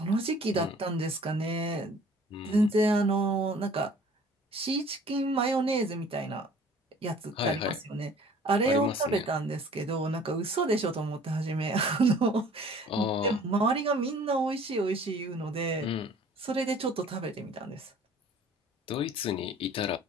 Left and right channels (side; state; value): both; normal; correlation 0.51